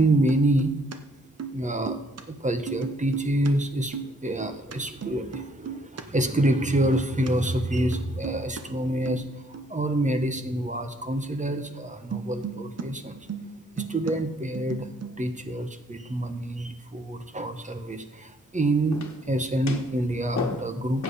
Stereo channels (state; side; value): normal; both; correlation 0.66